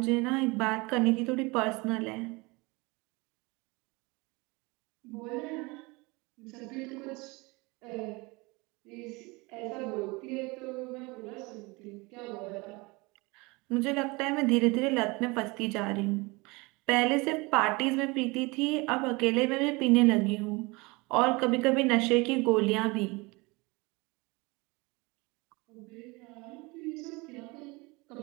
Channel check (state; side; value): quieter; left; 25.5 dB